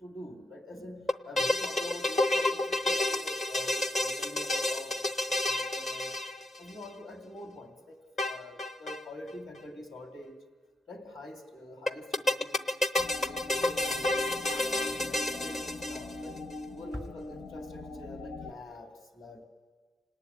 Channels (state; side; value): normal; both; correlation 0.80